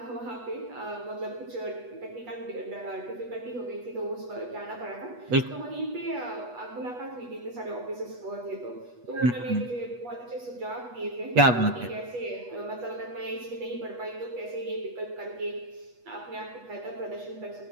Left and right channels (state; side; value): late; left; 8.2 ms